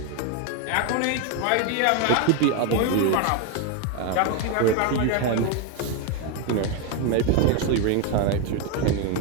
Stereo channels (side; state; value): both; different; correlation 0.02